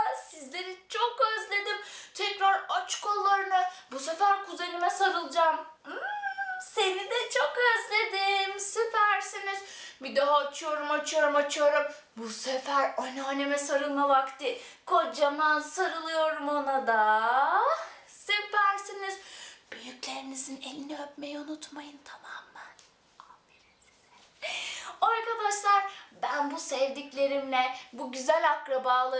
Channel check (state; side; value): identical; both; correlation 1.00